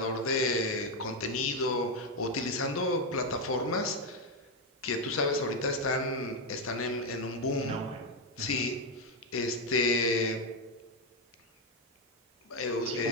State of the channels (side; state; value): both; normal; correlation 0.05